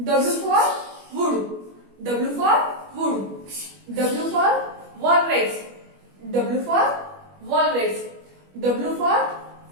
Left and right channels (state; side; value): late; left; 21 ms